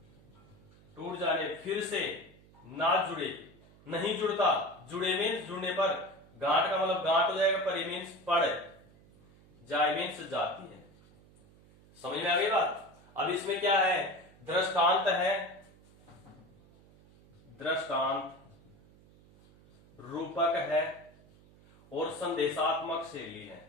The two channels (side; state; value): right; noise; hum, 26 dB below the sound